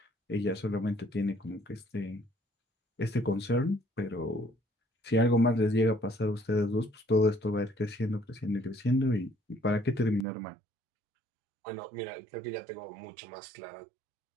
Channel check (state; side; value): drops out; left; at 10.2 s